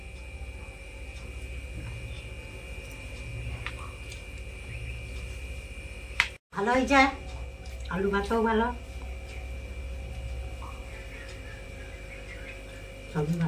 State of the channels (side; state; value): both; identical; correlation 1.00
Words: ভালো হয়েছে, আলু ভাতও ভালো, সবই